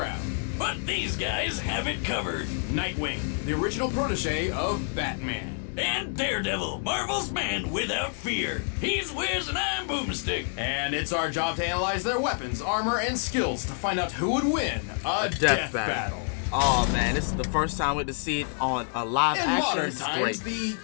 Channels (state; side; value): silent; right; 60 dB below the other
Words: But these guys have it covered. Nightwing, the original protege of Batman. And Daredevil, Marvel's man without fear. He's Wiz and I'm Boomstick. And it's our job to analyze their weapons, armor, and skills to find out who would win a death battle. Oh man, this is the first time we get to see it on a live In action. modern This is times, great. the